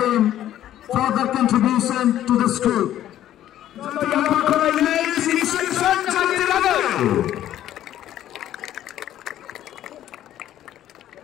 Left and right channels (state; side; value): quieter; right; 12.2 dB